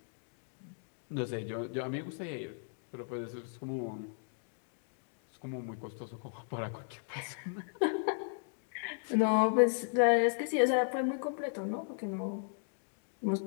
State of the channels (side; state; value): right; silent; digital silence